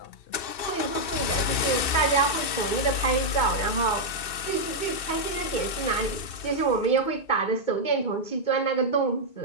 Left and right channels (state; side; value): late; right; 2.7 ms